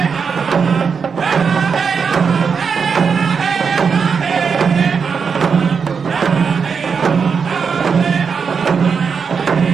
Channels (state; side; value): quieter; left; 5.9 dB